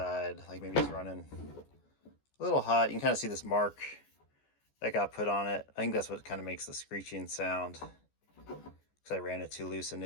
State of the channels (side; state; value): right; late; 14 ms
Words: like maybe it's running a little hot. You can kind of see this mark that got put on it. I think that's what kind of makes the screeching sound, because I ran it too loose